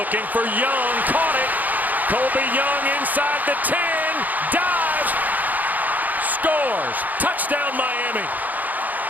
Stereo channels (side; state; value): left; late; 0.082 ms